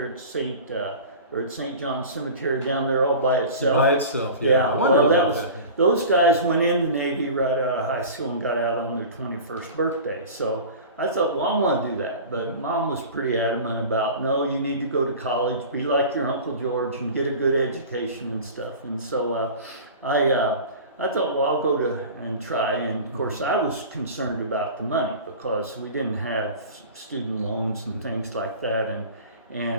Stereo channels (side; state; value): both; inverted; correlation -0.37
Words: at St. John's Cemetery down there all by itself. By itself, yeah. I wondered about that. Those guys went in the Navy right out of high school and got out on their 21st birthday. So I thought, well, I want to do that. But Mom was pretty adamant about, no, you need to go to college, be like your Uncle George and get a good education and stuff. And so I thought, well, I'll go and try. And of course, I was concerned about the money because we didn't have student loans and things like that.